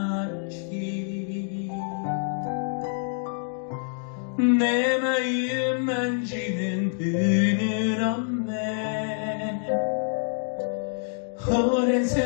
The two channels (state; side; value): silent; right; 61 dB below the other